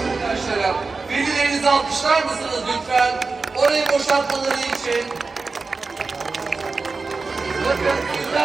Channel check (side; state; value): left; quieter; 4.1 dB